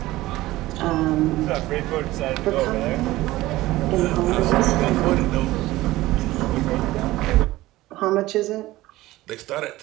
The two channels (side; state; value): left; quieter; 17.4 dB